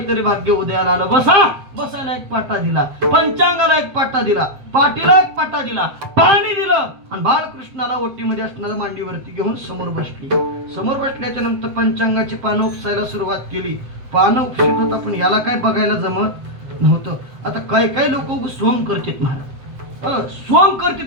भाग्य उदयाला आलं. बसा. बसायला एक पाटा दिला, पंचांगाला एक पाटा दिला, पाटीला एक पाटा दिला, पाणी दिलं आणि बाळकृष्णाला ओटीमध्ये असणाऱ्या मांडीवरती घेऊन समोर बसली. समोर बसल्याच्या नंतर पंचांगाची पानं उपसायला सुरुवात केली. पानं उपसित होता, पण याला काय बघायला जमत नव्हतं. आता काही लोक सोंग करतात महाराज, सोंग करतात,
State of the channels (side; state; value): left; late; 7.9 ms